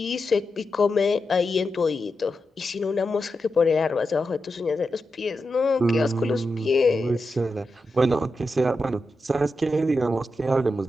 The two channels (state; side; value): normal; both; correlation 0.88